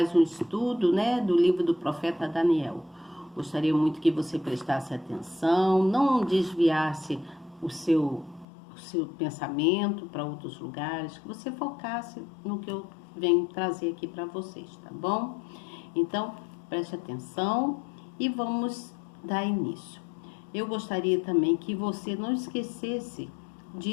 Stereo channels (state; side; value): drops out; right; at 8.5 s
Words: um estudo, do livro do profeta Daniel. Gostaria muito que você prestasse atenção, não desviasse o seu pensamento para outros lugares, que você focasse no que eu venho trazer aqui para vocês, tá bom? Então, preste atenção e vamos dar início. Eu gostaria também que você não esquecesse